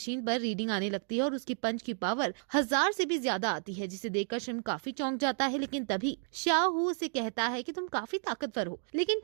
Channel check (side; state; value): left; silent; 56 dB below the other